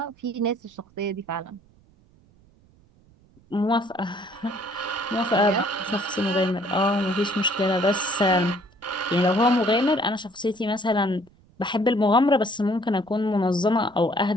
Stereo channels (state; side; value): noise; right; rumble, 30 dB below the sound